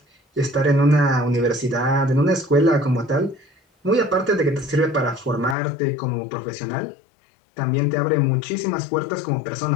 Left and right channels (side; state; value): right; drops out; at 5.6 s